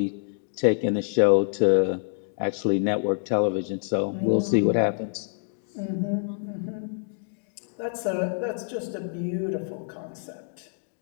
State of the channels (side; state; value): right; silent; digital silence